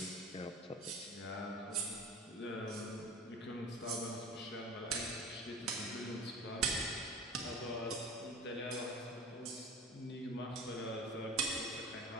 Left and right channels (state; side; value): normal; both; correlation 0.36